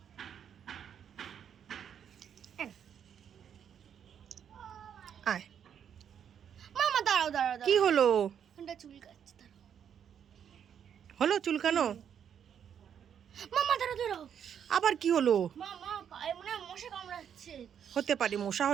আয়। মামা দাঁড়াও দাঁড়াও দাঁড়াও। কি হলো? ওটা চুল কাটছে, দাঁড়াও। হলো চুলকানো? মামা দাঁড়াও দাঁড়াও। আবার কি হলো? মামা পায়ে মনে হয় মশা কামড়াচ্ছে। হতে পারে, মশা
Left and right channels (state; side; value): quieter; left; 8.4 dB